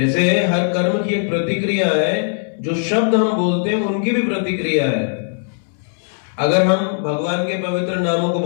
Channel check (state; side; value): silent; right; 67 dB below the other